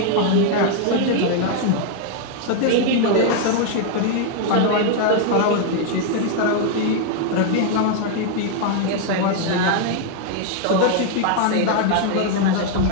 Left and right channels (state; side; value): different; both; correlation 0.00